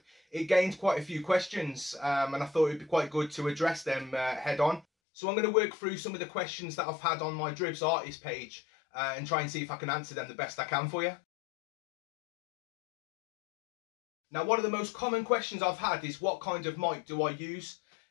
it gained quite a few questions and I thought it'd be quite good to address them head on. So I'm going to work through some of the questions that I've had on my Dribbz artist page and try and see if I can answer them the best I can for you. Now, one of the most common questions I've had is what kind of mic do I use?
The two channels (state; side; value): drops out; right; at 4.9 s